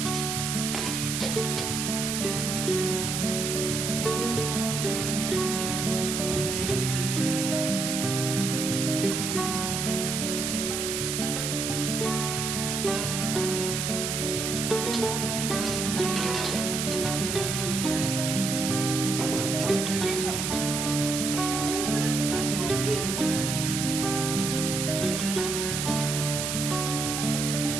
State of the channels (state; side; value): noise; right; hiss, 2 dB below the sound